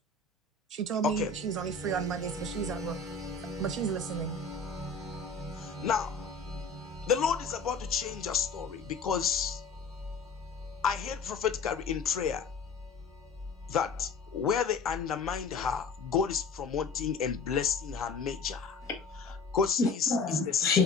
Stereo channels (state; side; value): quieter; right; 4.1 dB